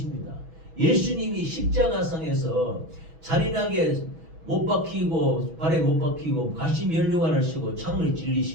예수님이 십자가상에서 잔인하게 못 박히고 발에 못 박히고 가시 면류관을 쓰고 창을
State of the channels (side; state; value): left; late; 6.1 ms